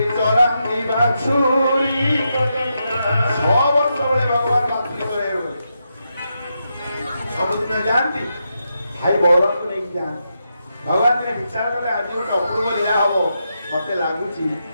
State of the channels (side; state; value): both; inverted; correlation -0.84